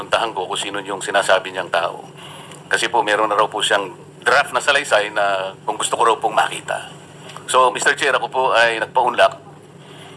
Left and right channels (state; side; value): identical; both; correlation 1.00